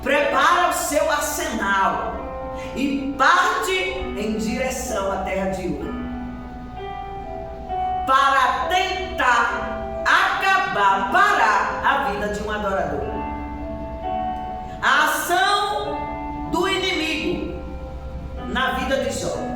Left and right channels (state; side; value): identical; both; correlation 1.00